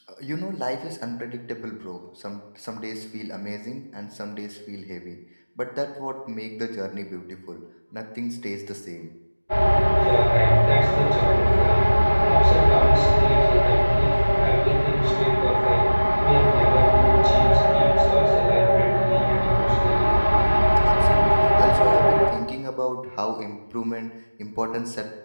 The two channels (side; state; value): both; inverted; correlation -1.00